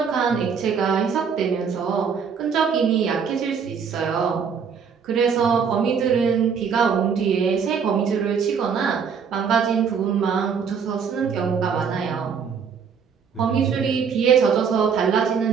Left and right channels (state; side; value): quieter; left; 6.5 dB